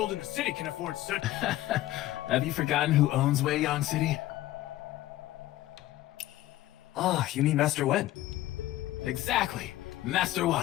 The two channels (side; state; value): right; quieter; 15.5 dB